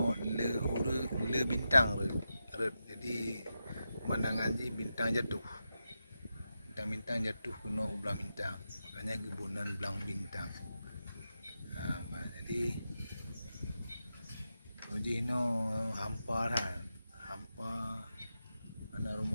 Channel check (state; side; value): inverted; both; correlation -0.89